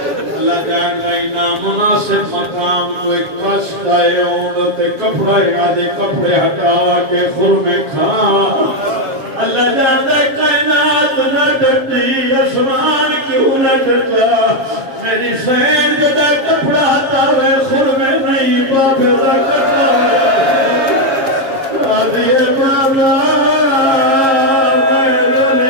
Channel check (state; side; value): late; left; 7.2 ms